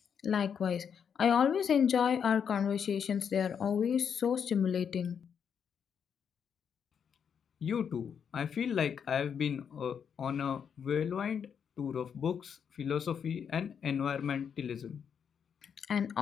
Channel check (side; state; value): right; quieter; 7.4 dB